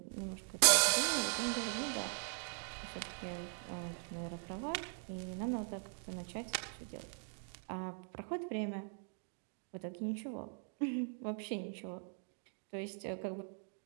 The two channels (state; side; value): silent; left; 51 dB below the other